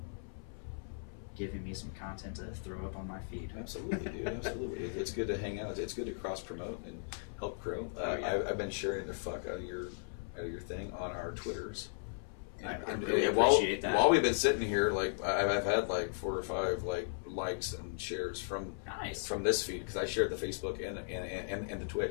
giving me some content to throw up on my feed. Absolutely, dude. Absolutely. It's good to hang out. It's good to cross promote and help grow. Yeah. I've been sharing the fuck out of your thing on our Twitters. I really appreciate that. While we've been sitting here, like I've had like 4 or 5 likes and shares from this feed because I shared the Facebook and the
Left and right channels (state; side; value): silent; right; 53 dB below the other